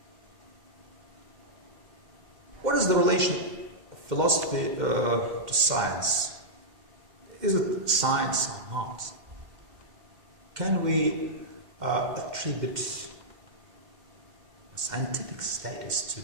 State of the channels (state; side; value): late; left; 2.1 ms